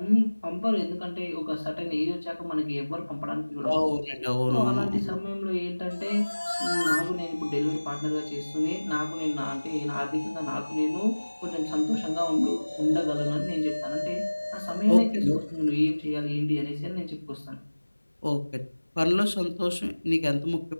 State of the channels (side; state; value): both; inverted; correlation -1.00